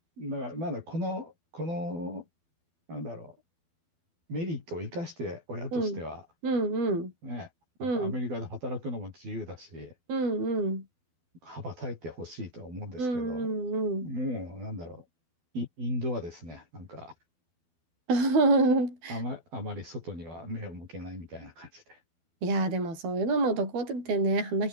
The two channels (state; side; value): late; left; 12 ms